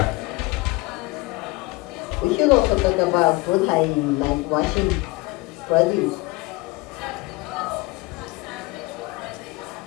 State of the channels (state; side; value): quieter; right; 23.2 dB